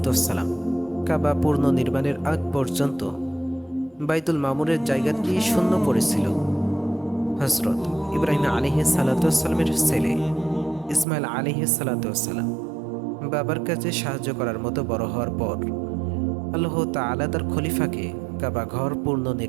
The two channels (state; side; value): drops out; left; at 11.1 s